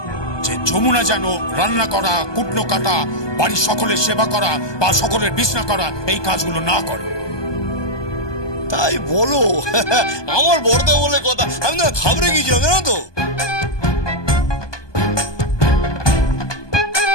যে যমুনা যেন রান্না করা, কুটনো কাটা, বাড়ির সকলের সেবা করা বা সকলের বিছনা করা এই কাজগুলো না করে। তাই বলো? আমার বড়দা বলে কথা, আমি না ঘাবড়ে গিয়েছিলাম জানো তো।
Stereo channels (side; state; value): right; late; 1.2 ms